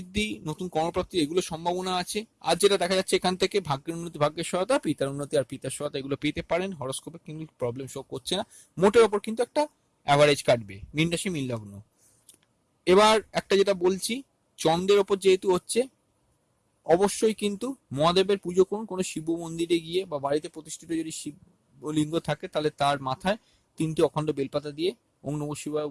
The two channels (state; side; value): identical; both; correlation 1.00